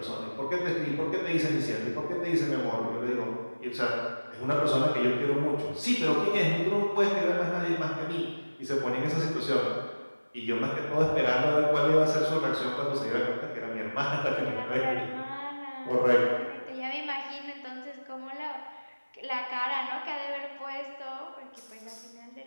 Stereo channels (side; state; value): both; inverted; correlation -1.00